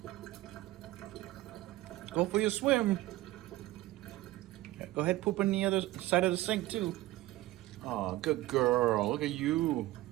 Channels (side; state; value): left; quieter; 17.2 dB